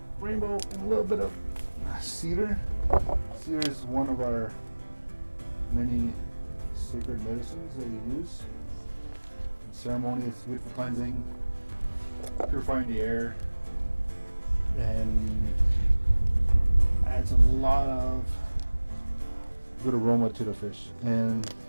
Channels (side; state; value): both; inverted; correlation -1.00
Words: rainbow in a little bit of cedar. Cedar is one of our many sacred medicines that we use. In ceremony, it's good for cleansing, purifying the air, and adds a lot of good aroma to the fish. And